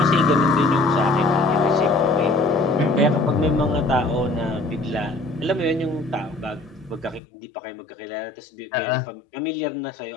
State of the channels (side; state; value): right; drops out; at 7.2 s